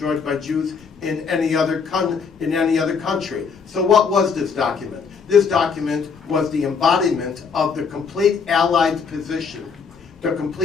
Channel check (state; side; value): quieter; right; 5.6 dB